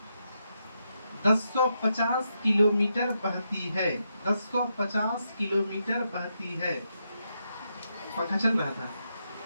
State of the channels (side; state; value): both; inverted; correlation -0.83